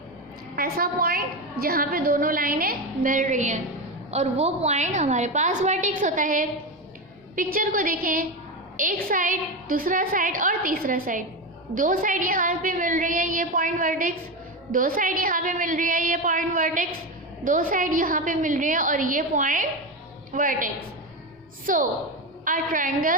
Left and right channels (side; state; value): both; normal; correlation 0.16